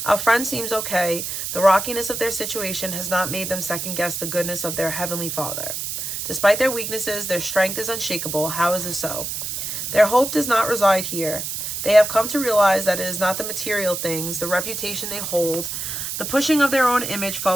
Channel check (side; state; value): right; noise; hiss, 4 dB below the sound